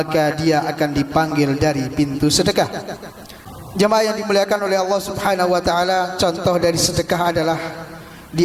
dia akan dipanggil dari pintu sedekah. Jemaah yang dimuliakan oleh Allah Subhanahu wa taala, contoh dari sedekah adalah di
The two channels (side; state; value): both; identical; correlation 1.00